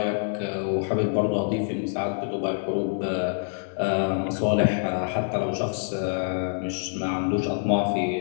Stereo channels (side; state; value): right; silent; digital silence